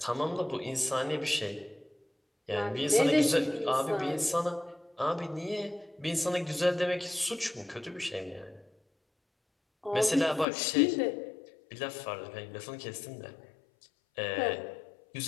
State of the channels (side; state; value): right; drops out; at 10.5 s